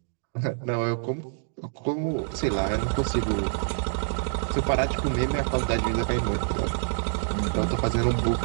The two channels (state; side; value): silent; left; digital silence